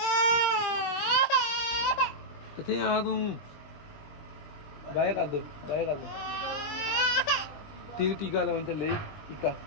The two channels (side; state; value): right; late; 20 ms